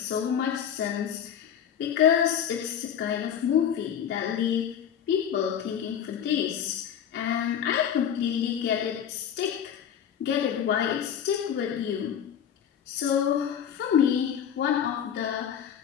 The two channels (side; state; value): right; quieter; 8.9 dB